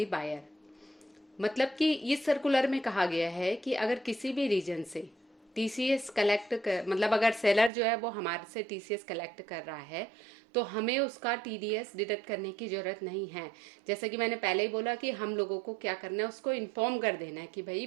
buyer. मतलब कि इस circular में कहा गया है कि अगर किसी भी रीजन से TCS कलेक्ट कर, मतलब अगर सेलर जो है वो हमारे से TCS कलेक्ट कर रहा है, तो हमें उसका TDS डिडक्ट करने की ज़रूरत नहीं है। जैसा कि मैंने पहले ही बोला कि हम लोगों को क्या करना है, उसको इन्फॉर्म कर देना है कि भाई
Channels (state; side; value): drops out; left; at 7.7 s